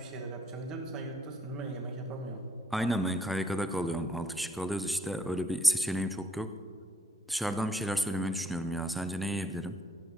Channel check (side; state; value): both; normal; correlation 0.69